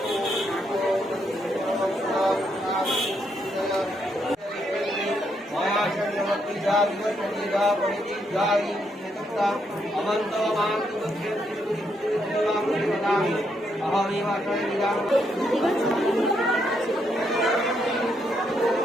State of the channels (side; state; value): both; normal; correlation 0.77